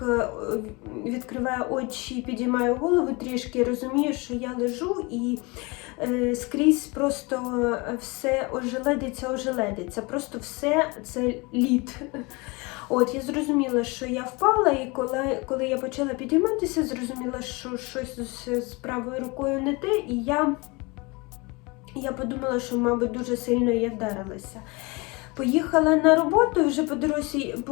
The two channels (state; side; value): quieter; right; 26.6 dB